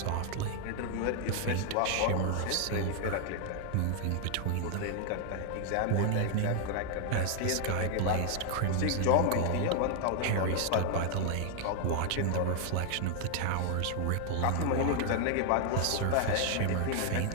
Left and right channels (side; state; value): both; different; correlation 0.00